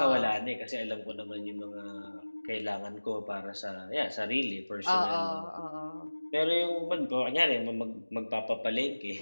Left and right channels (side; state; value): both; inverted; correlation -1.00